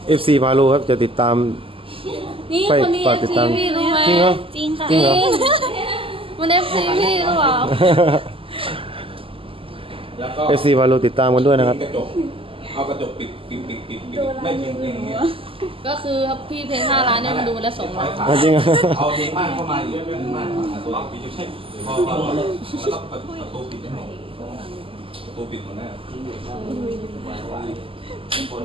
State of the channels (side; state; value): left; late; 0.26 ms